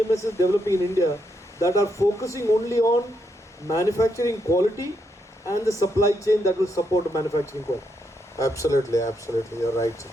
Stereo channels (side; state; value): both; normal; correlation 0.79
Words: developing in India that are focusing only on manufacturing quality and the supply chain that will support manufacturing quality. Absolutely, you're right.